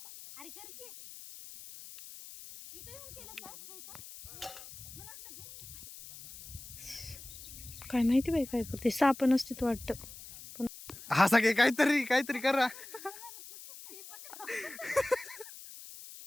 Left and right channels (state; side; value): noise; left; hiss, 15 dB below the sound